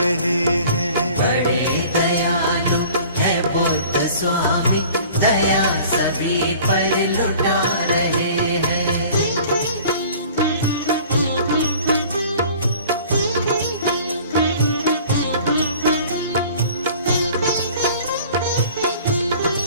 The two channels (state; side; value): inverted; both; correlation -0.47